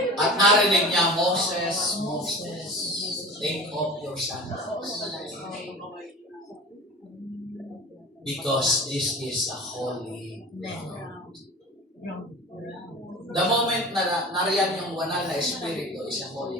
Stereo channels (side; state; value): both; normal; correlation 0.36